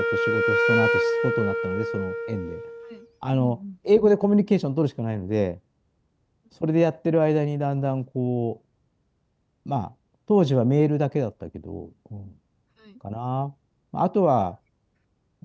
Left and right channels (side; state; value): both; identical; correlation 1.00